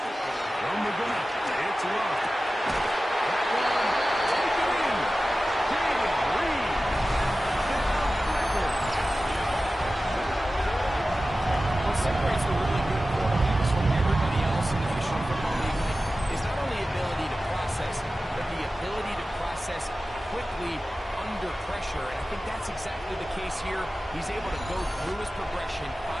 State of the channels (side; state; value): both; normal; correlation 0.95